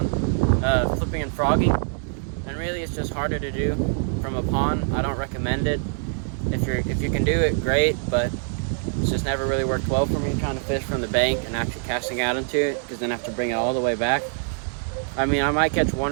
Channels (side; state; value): left; silent; 63 dB below the other